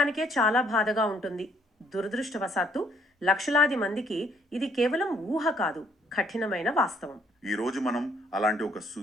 చాలా బాధగా ఉంటుంది. దురదృష్టవశాత్తు లక్షలాది మందికి ఇది కేవలం ఊహ కాదు, కఠినమైన వాస్తవం. ఈ రోజు మనం అలాంటి ఒక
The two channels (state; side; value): normal; both; correlation 0.66